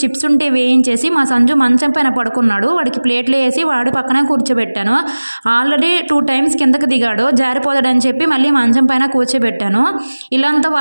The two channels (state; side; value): inverted; both; correlation -1.00